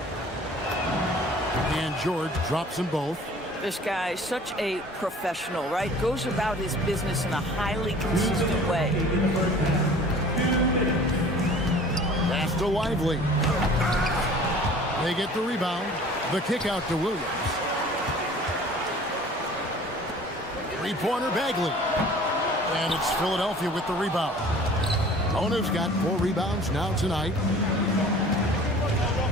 And George drops them both. This guy is such a professional, right? Goes about his business in a highly consistent way. Pass to Lively. They get the rebound. The kick out to Williams. Three-pointer Bagley. And it's Philadelphia with the rebound. Bona's got 4 rebounds now tonight.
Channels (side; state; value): both; normal; correlation 0.47